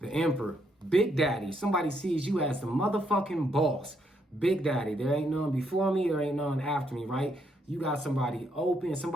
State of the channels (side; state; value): both; normal; correlation 0.75